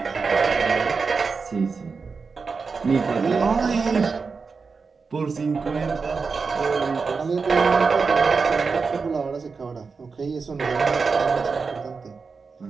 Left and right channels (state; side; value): quieter; left; 4.8 dB